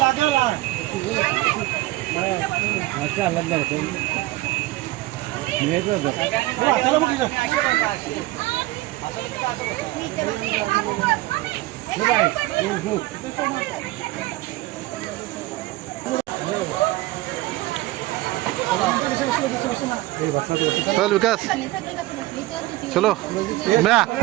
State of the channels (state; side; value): quieter; left; 18.5 dB